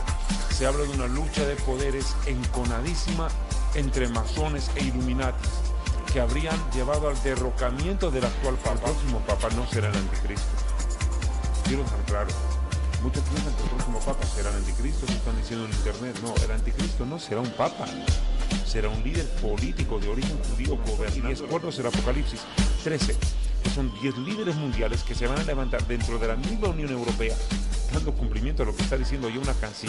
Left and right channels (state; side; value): identical; both; correlation 1.00